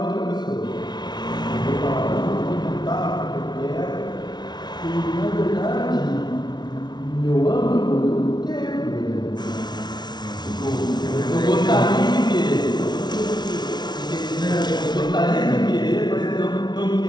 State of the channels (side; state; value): right; late; 0.20 ms